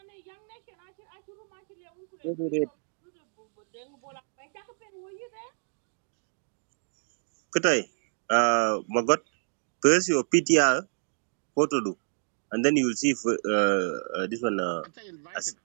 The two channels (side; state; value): left; silent; digital silence